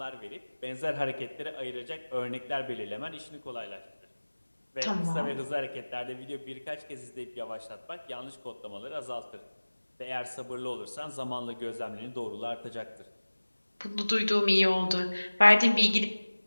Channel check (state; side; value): inverted; both; correlation -1.00